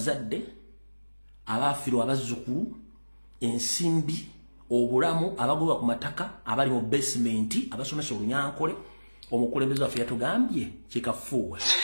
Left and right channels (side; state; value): both; inverted; correlation -1.00